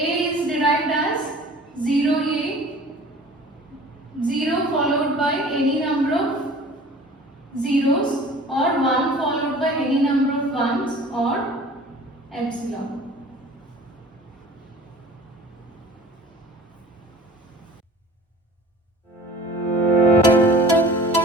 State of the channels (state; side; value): normal; both; correlation 0.44